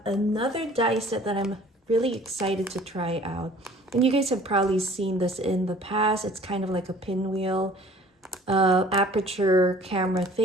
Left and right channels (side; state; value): both; normal; correlation 0.51